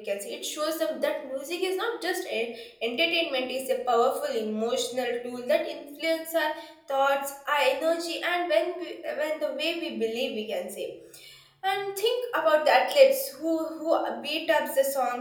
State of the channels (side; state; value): both; identical; correlation 1.00